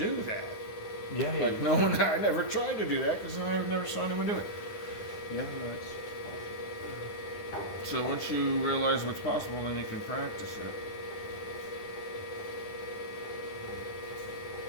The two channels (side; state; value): right; late; 9.5 ms